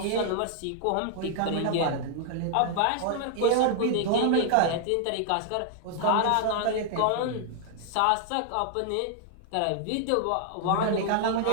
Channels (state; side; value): different; both; correlation 0.00